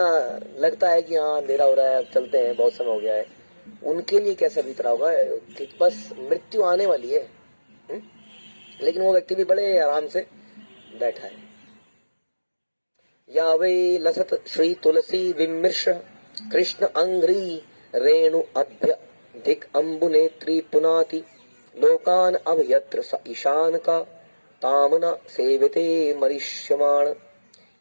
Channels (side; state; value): both; inverted; correlation -1.00